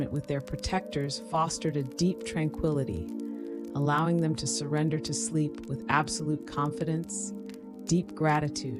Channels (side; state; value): both; identical; correlation 1.00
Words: with their protectors fostered a deep tranquility, allowing them to surrender to sleep with absolute confidence, deep